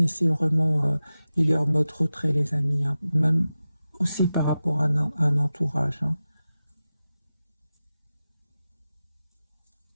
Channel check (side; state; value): both; inverted; correlation -0.94